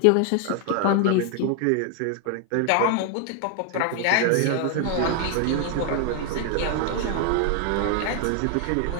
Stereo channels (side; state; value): both; different; correlation 0.00